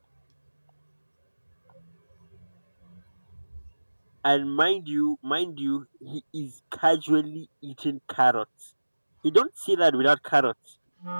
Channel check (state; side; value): inverted; both; correlation -1.00